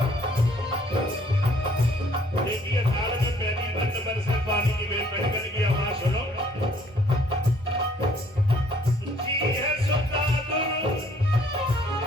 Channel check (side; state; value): both; normal; correlation 0.61